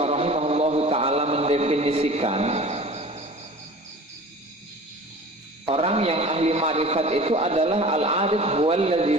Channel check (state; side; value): normal; both; correlation 0.41